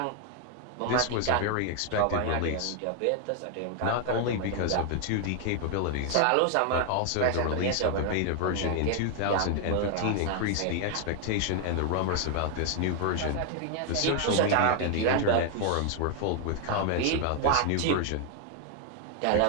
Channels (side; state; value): both; different; correlation 0.00